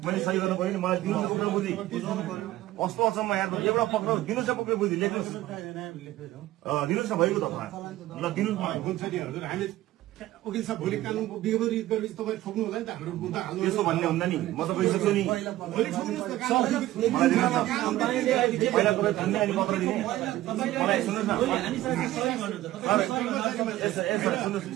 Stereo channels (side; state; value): left; quieter; 15.6 dB